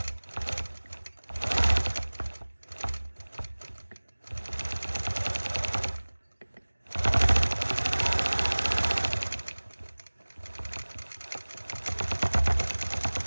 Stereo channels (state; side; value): inverted; both; correlation -1.00